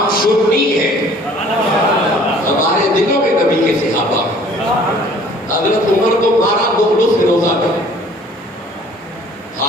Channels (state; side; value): normal; both; correlation 0.53